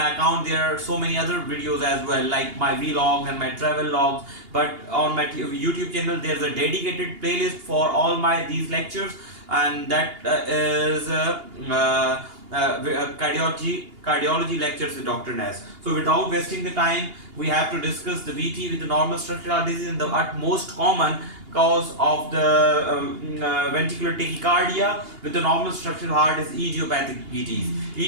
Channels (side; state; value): left; late; 2.8 ms